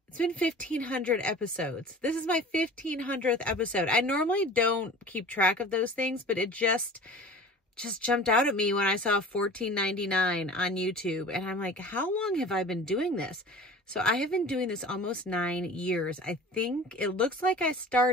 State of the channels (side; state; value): both; normal; correlation 0.40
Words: it's been 1,500 episodes. This is my 1,500th episode. I normally don't keep track of those things, but it just jumped out at me when I saw $14.99 on YouTube. And I'm like, how long have I been doing this? So I have been doing this almost 9 years. I think it looks like I